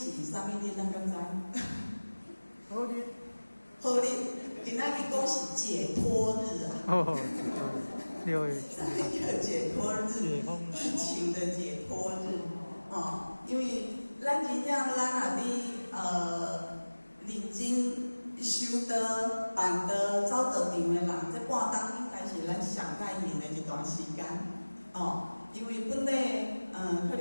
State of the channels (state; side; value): inverted; both; correlation -1.00